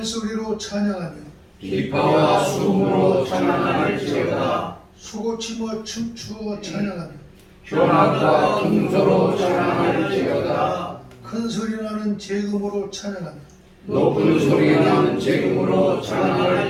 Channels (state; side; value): identical; both; correlation 1.00